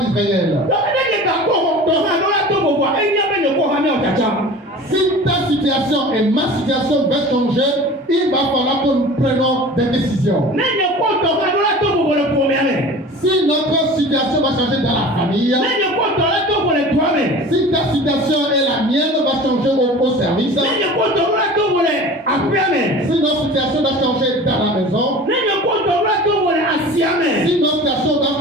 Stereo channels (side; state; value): both; normal; correlation 0.39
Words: Si ta situation et ma situation va changer, il va falloir que nous prenions des décisions. Si notre situation va changer dans la famille, si ta situation et la mienne va changer au service, si notre situation va changer dans la maison, si notre situation va